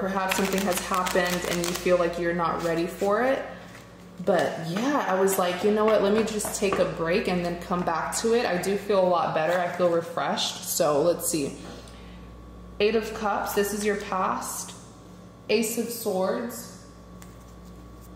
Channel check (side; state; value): both; identical; correlation 1.00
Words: perhaps something has happened and you feel like you're not ready for it. But yeah, I was like, you know what, let me just take a break and then come back to it. I do feel a lot better. I feel refreshed. So let's see. Eight of Cups, this is your past. Ace of Swords.